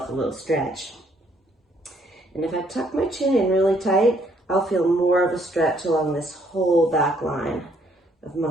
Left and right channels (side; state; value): both; normal; correlation 0.67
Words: a little stretch. And if I tuck my chin in really tight, I'll feel more of a stretch along this whole back line of